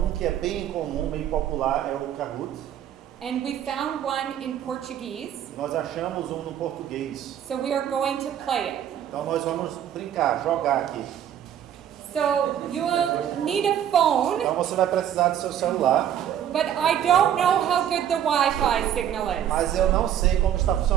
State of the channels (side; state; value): left; quieter; 10.2 dB